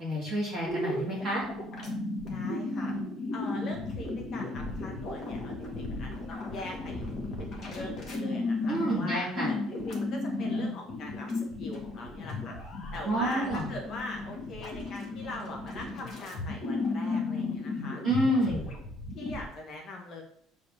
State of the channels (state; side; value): normal; both; correlation 0.66